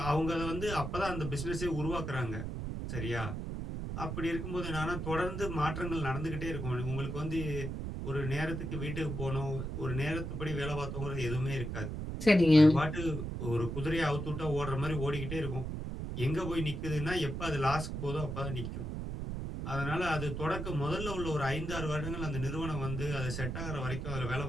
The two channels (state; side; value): noise; right; rumble, 4 dB below the sound